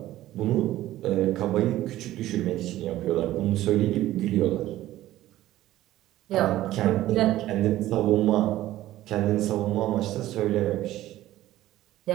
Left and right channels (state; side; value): quieter; left; 14.8 dB